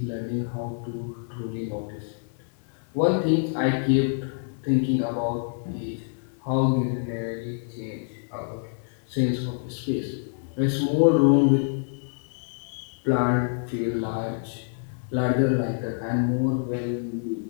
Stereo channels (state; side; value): silent; right; digital silence